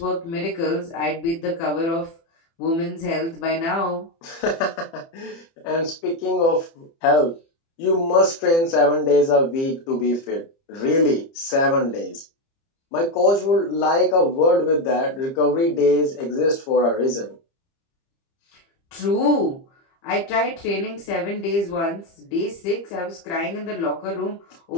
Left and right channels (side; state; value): right; late; 30 ms